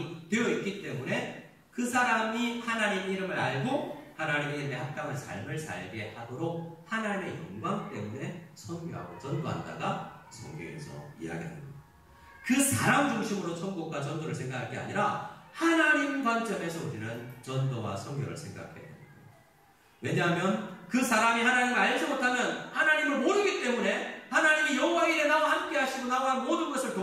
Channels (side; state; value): both; identical; correlation 1.00